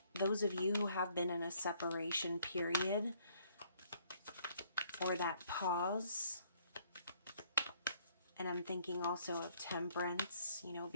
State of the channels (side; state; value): both; inverted; correlation -0.65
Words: those of you who have been in a separation period or that pause. And I'm thinking also of temperance, you know,